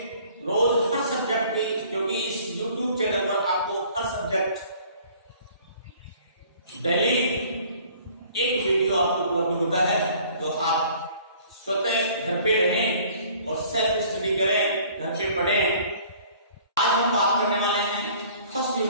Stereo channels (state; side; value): inverted; both; correlation -0.53